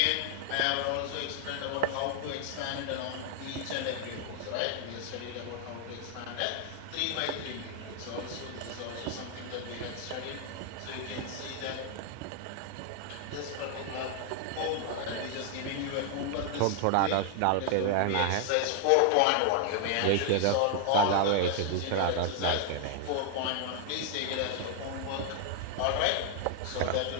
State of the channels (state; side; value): different; both; correlation 0.00